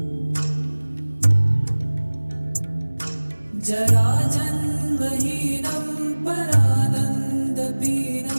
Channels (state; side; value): inverted; both; correlation -1.00